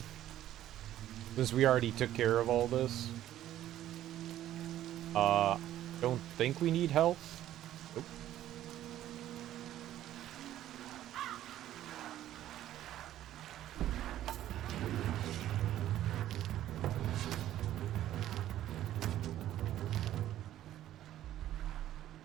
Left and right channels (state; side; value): quieter; left; 12.7 dB